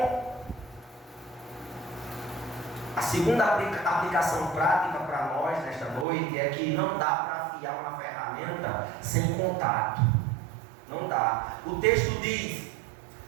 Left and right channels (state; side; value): drops out; left; at 6.1 s